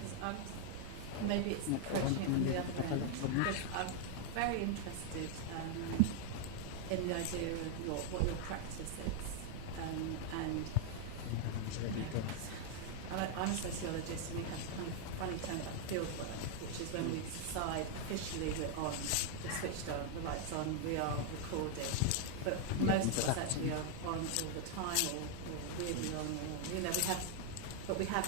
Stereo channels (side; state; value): both; different; correlation 0.00